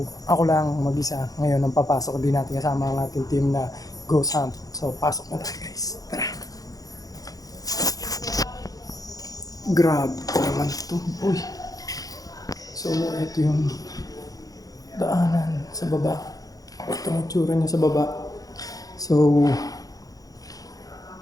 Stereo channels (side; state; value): right; late; 0.17 ms